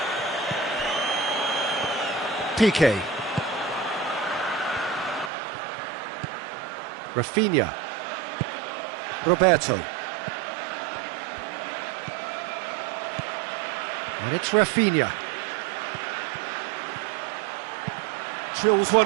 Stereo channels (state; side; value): drops out; left; at 5.3 s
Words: Piqué. Rafinha. Roberto. And it's Rafinha. Drills